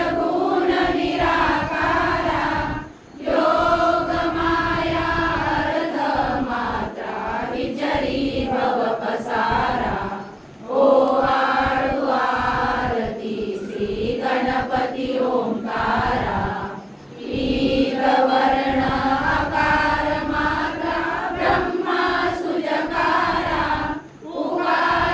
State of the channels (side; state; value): both; identical; correlation 1.00